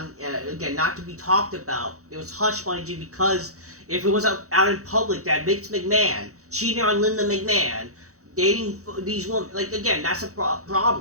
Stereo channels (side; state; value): left; late; 0.65 ms